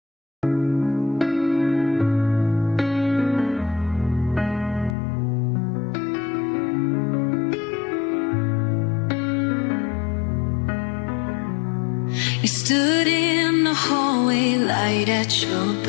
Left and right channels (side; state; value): right; drops out; at 5.0 s